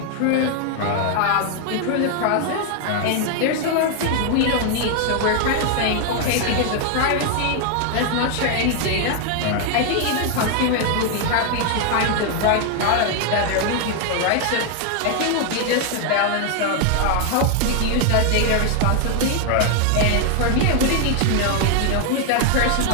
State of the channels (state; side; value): different; both; correlation 0.00